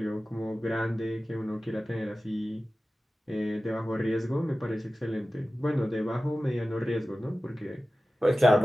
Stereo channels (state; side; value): normal; both; correlation 0.95